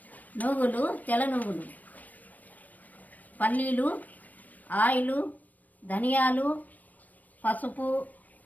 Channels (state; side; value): late; right; 0.080 ms